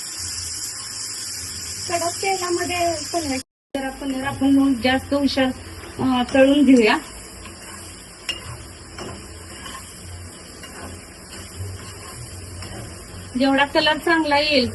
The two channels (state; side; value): identical; both; correlation 1.00